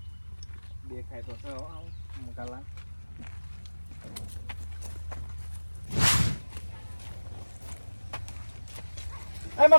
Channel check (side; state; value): both; inverted; correlation -1.00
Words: દેખાય તો છે મકાલા. એ